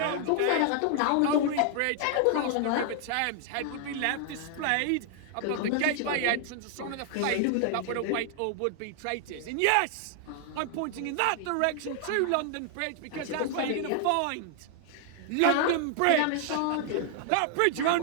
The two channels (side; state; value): both; different; correlation 0.00